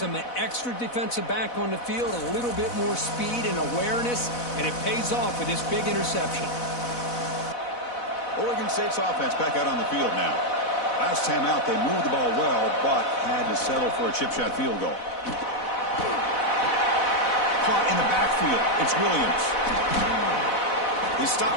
an extra defensive back on the field, a little bit more speed and awareness, and it pays off with this big interception. Oregon State's offense back out on the field now. Last time out, they moved the ball well, but had to settle for a chip shot field goal. Caught in the backfield. It's Williams. They stop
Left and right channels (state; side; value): late; right; 4.1 ms